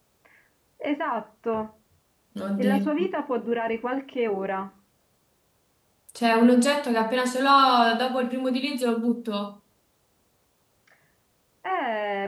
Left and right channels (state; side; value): identical; both; correlation 1.00